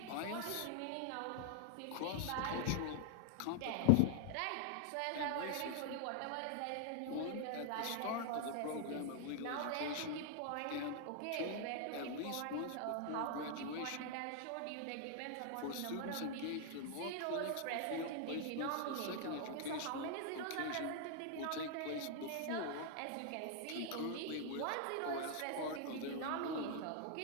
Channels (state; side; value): different; both; correlation 0.00